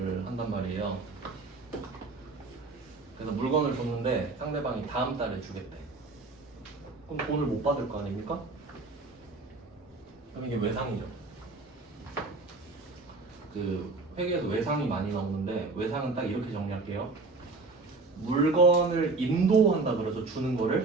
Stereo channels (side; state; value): left; quieter; 3.7 dB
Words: 한단 말이에요. 그래서 물건을 줬는데 상대방이 다음 달에 주겠대. 그럼 돈을 못 받을 거 아닙니까? 그럼 이게 외상이죠. 그 회계에서 외상이 많이 나오는데 외상은 딱 이렇게 정리할게요. 물건을 인도한다 그래서 주는